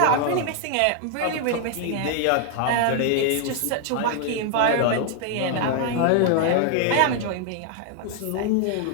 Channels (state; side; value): different; both; correlation 0.00